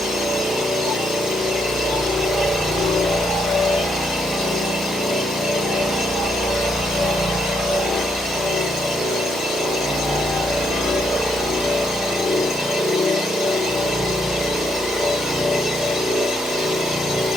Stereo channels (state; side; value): normal; both; correlation 0.75